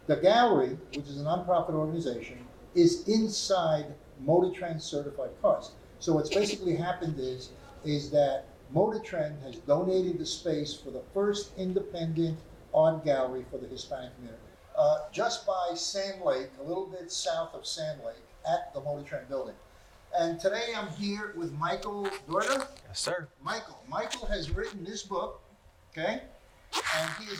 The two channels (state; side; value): identical; both; correlation 1.00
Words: the gallery, which is a nonprofit organization, is inside Motor Trend Certified Cars. So what's basically happened is that Motor Trend has donated the space for the first independent art gallery for the Hispanic community. Just by Sand Lake, a little bit south of Sand Lake, at the Motor Trend building. And today I'm here with Michael Dorta. Yes, sir. Michael has written this book, okay? And he is